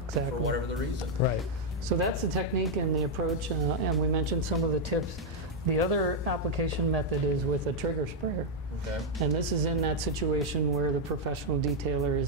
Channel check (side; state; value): both; normal; correlation -0.02